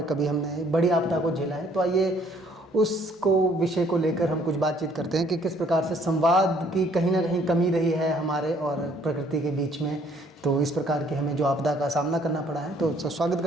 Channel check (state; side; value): normal; both; correlation 0.61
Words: कभी हमने बड़ी आपदा को झेला है। तो आइए उसको विषय को लेकर हम कुछ बातचीत करते हैं कि किस प्रकार से संवाद की कहीं ना कहीं कमी रही है हमारे और प्रकृति के बीच में। तो इस प्रकार की हमें जो आपदा का सामना करना पड़ा है, तो स्वागत